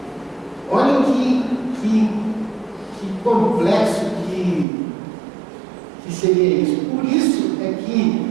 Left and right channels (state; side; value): drops out; left; at 4.7 s